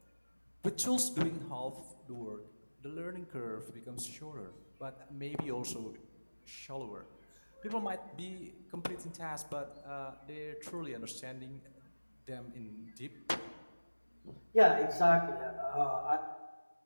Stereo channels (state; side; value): inverted; both; correlation -1.00